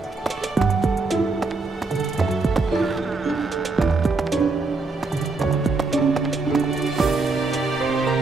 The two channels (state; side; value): quieter; left; 3.6 dB